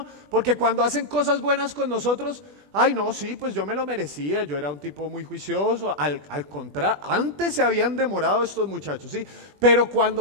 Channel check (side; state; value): left; late; 20 ms